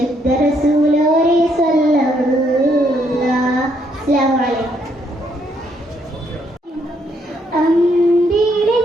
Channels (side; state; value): both; normal; correlation 0.72